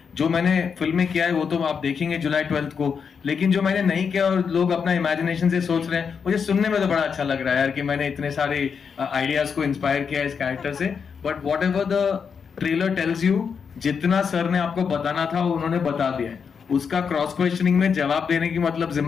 जो मैंने फिल्में किया है वो तो आप देखेंगे जुलाई 12 को, लेकिन जो मैंने नहीं किया और लोग अपना इमेजिनेशन से सोच रहे हैं, मुझे सुनने में तो बड़ा अच्छा लग रहा है यार कि मैंने इतने सारे आइडियाज को इंस्पायर किया इस कैरेक्टर से। But what ever the trailer tells you, जितना सर ने आपको बताना था वो उन्होंने बता दिया है। उसका क्रॉस क्वेश्चनिंग में जवाब देने की मतलब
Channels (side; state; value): right; quieter; 6.3 dB